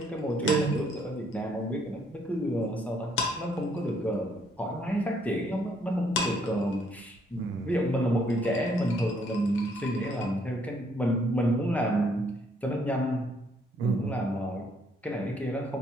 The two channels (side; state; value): both; normal; correlation 0.68